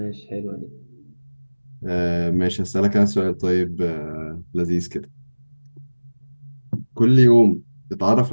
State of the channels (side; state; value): both; inverted; correlation -1.00